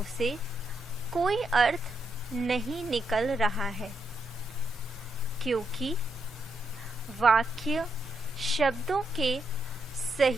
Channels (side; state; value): both; normal; correlation 0.80